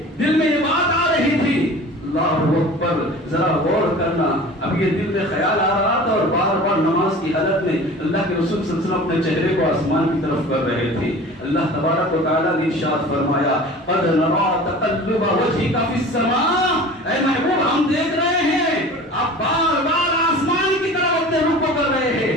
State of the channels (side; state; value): both; normal; correlation 0.40